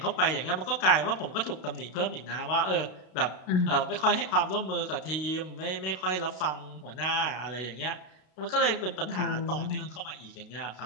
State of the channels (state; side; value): late; right; 32 ms